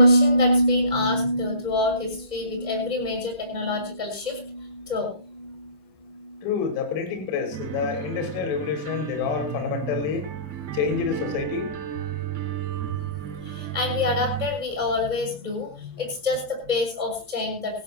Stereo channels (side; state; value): left; late; 2.0 ms